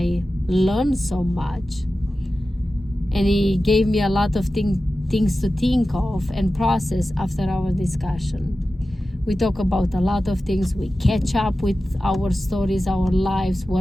learned so much. And he gave me a lot of things to think of and process after our discussion. We talk about a lot of things. We catch up with our stories, our lives,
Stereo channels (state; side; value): normal; both; correlation 0.94